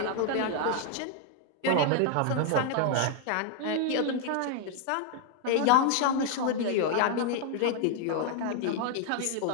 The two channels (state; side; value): different; both; correlation 0.00